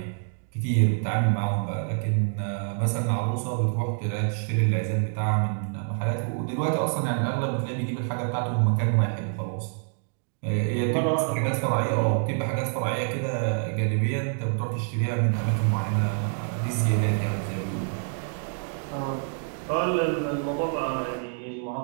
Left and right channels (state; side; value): silent; left; 57 dB below the other